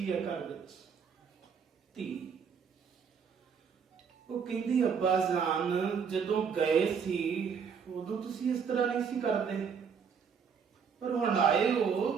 ਹੈ ਘਰ ਵਿੱਚ, ਧੀ। ਉਹ ਕਹਿੰਦੀ ਅੱਬਾ ਜਾਨ ਜਦੋਂ ਗਏ ਸੀ ਉਦੋਂ ਤੁਸੀਂ ਇਸ ਤਰ੍ਹਾਂ ਨਹੀਂ ਸੀ ਕਰਦੇ, ਪਰ ਹੁਣ ਆਏ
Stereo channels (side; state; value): left; quieter; 6.5 dB